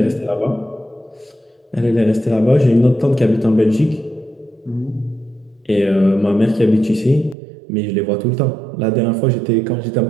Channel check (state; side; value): drops out; left; at 7.4 s